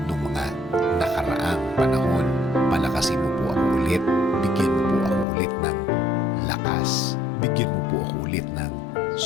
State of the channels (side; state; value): right; drops out; at 5.2 s